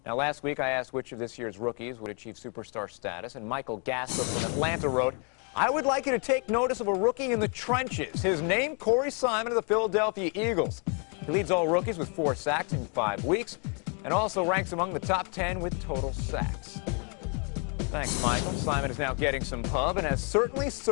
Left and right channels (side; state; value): right; quieter; 37.6 dB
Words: Now, last week I asked which of this year's rookies would achieve superstar status, and Michael Gasser from Atlanta wrote, I would like you to take notice of a rookie in the trenches. His name, Corey Simon of the Philadelphia Eagles. He leads all rookies with 4 sacks in 5 weeks and also ranks among the top 10 with total sacks. Thanks, Michael. Simon is now getting some pub and has certainly